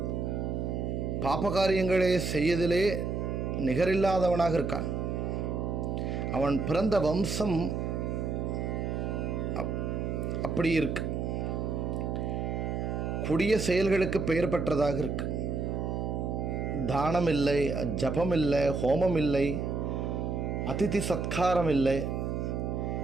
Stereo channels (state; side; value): noise; right; hum, 1 dB below the sound